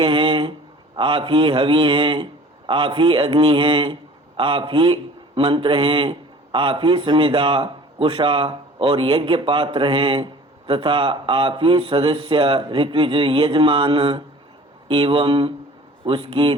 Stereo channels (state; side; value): normal; both; correlation 0.46